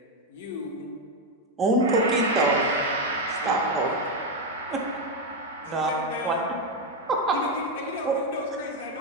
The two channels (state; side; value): normal; both; correlation 0.06